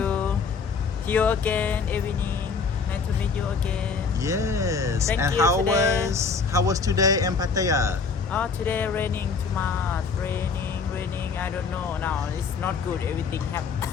See you again evening. Nice to meet you again. Yes. Thank and you how today. was today in Pattaya? Oh, today raining too much. Raining. I don't know now. It's not good. Everything have.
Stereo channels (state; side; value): quieter; right; 5.1 dB